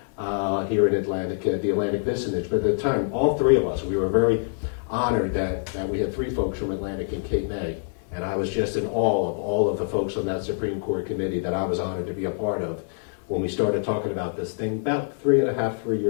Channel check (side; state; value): right; silent; digital silence